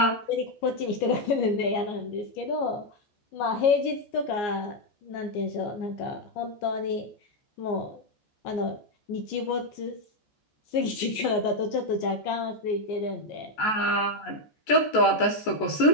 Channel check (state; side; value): late; right; 14 ms